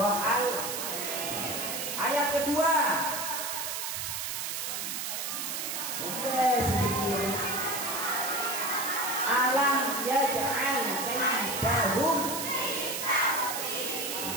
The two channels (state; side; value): noise; right; hiss, 3 dB below the sound